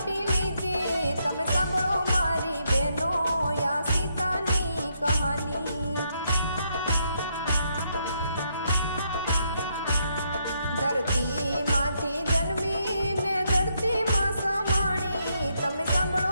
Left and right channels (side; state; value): both; inverted; correlation -0.76